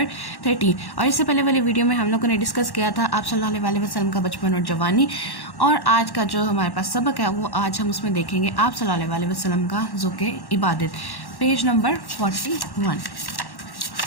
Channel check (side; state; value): right; late; 1.1 ms